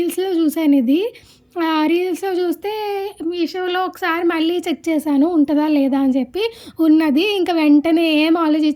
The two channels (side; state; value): both; identical; correlation 1.00